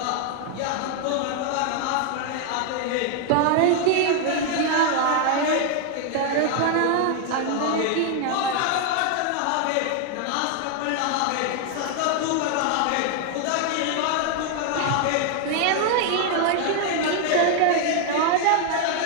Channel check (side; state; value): both; different; correlation 0.00